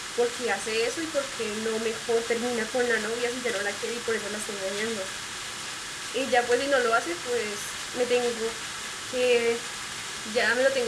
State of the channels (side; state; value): both; identical; correlation 1.00